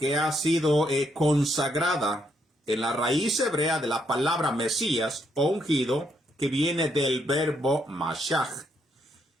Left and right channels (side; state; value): both; normal; correlation 0.75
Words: ha sido consagrada, en la raíz hebrea de la palabra Mesías o ungido, que viene del verbo Mashach.